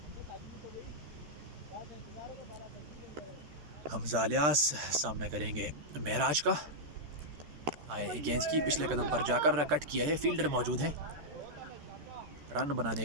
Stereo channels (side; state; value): left; late; 13 ms